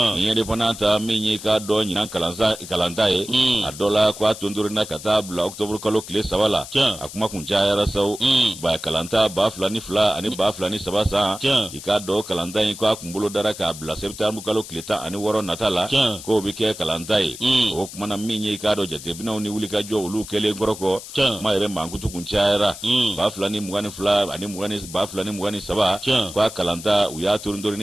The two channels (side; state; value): left; noise; hiss, 13 dB below the sound